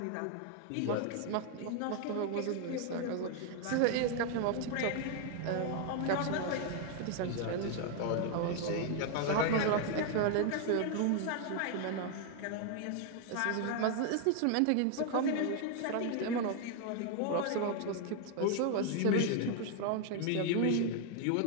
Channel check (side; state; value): both; different; correlation 0.00